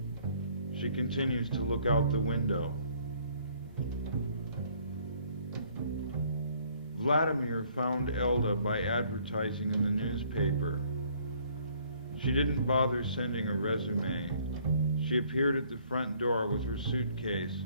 She continues to look out the window. Vladimir found Elda by advertising in the newspaper. She didn't bother sending a resume. She appeared at the front door with her suitcase,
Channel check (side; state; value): both; inverted; correlation -0.62